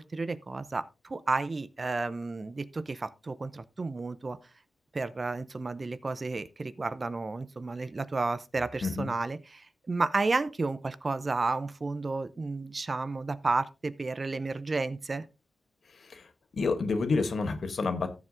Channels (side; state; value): both; normal; correlation 0.93